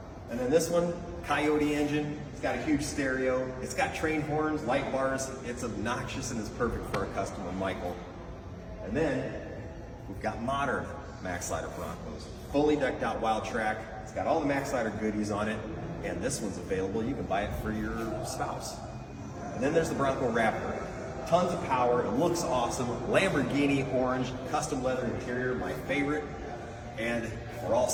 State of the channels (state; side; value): identical; both; correlation 1.00